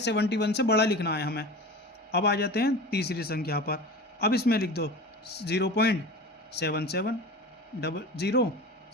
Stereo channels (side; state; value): both; normal; correlation 0.33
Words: से बड़ा लिखना है हमें। अब आ जाते हैं तीसरी संख्या पर। अब इसमें लिख दो 0.77 00,